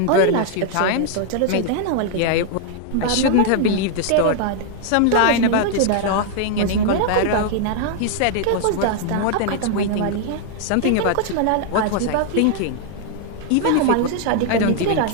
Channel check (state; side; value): different; both; correlation 0.00